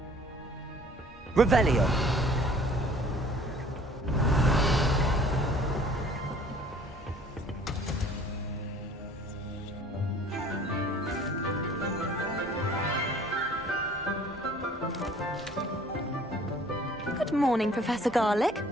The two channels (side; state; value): both; normal; correlation 0.53